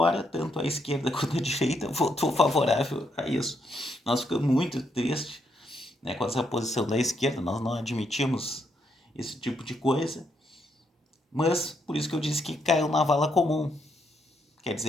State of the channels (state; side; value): normal; both; correlation 0.77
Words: tanto a esquerda quanto a direita votou favorável a isso. Nós ficamos muito tristes, né, com essa posição da esquerda, nós não admitimos esse tipo de coisa, mas por isso que eu disse que caiu na vala comum. Quer